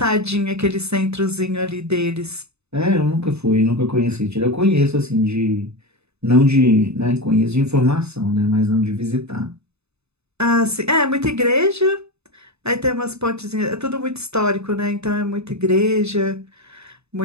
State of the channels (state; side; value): late; left; 0.80 ms